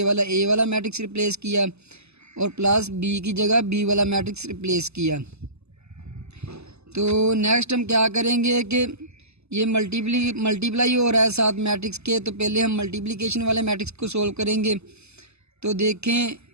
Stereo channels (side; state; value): left; late; 0.80 ms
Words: वाला ए वाला मैट्रिक्स रिप्लेस किया और प्लस बी की जगह बी वाला मैट्रिक्स रिप्लेस किया। तो नेक्स्ट हम क्या करेंगे कि ये मल्टीप्लाई हो रहा है साथ मैट्रिक्स के, तो पहले हम मल्टीप्लिकेशन वाले मैट्रिक्स को सोल्व करेंगे। तो देखें